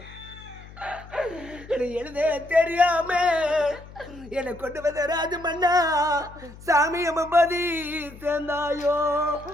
எழுத தெரியாம என்னை கொண்டு வந்த ராஜு மன்னா சாமி அம்மதி சேர்ந்தாயோ.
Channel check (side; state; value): left; noise; hum, 18 dB below the sound